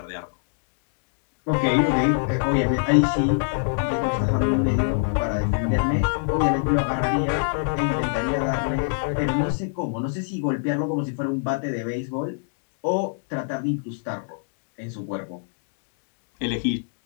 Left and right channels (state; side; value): silent; right; digital silence